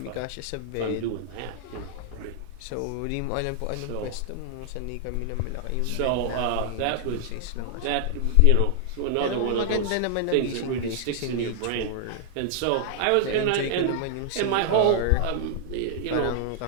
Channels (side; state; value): both; different; correlation 0.00